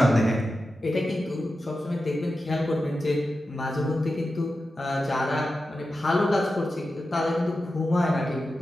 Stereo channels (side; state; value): both; normal; correlation 0.92